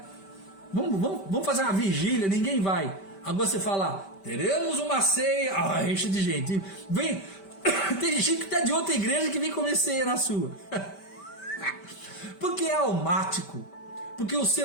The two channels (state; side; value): late; right; 5.1 ms